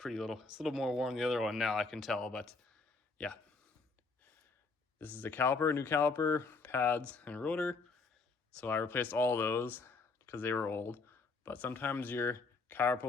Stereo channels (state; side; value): quieter; right; 4.1 dB